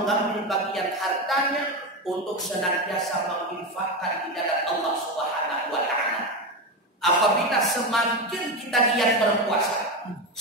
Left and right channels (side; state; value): both; normal; correlation 0.15